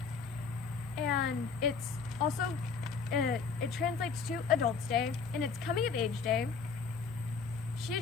and it's also it translates to Adults Day, and it's Coming of Age Day,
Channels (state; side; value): quieter; right; 5.3 dB